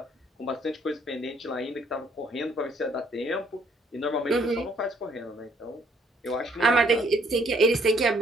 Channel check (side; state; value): both; normal; correlation 0.66